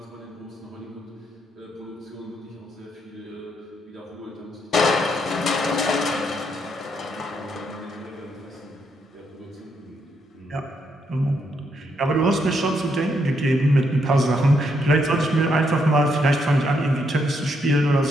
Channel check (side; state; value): both; normal; correlation 0.76